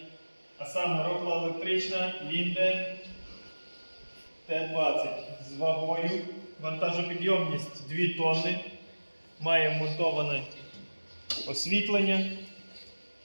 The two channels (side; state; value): both; inverted; correlation -1.00